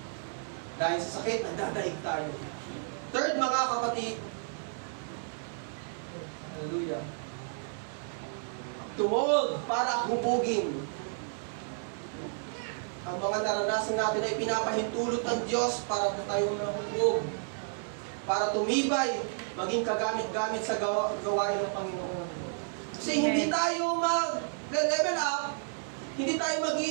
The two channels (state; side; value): silent; left; digital silence